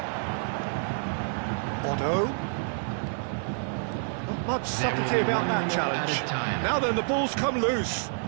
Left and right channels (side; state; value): left; silent; digital silence